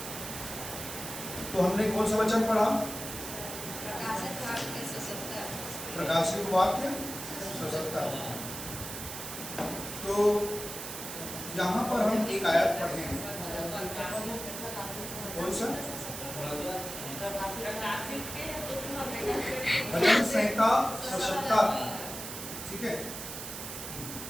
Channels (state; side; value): noise; right; hiss, 8 dB below the sound